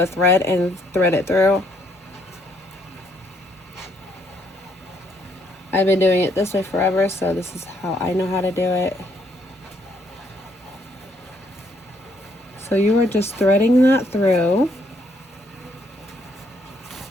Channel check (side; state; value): both; normal; correlation 0.70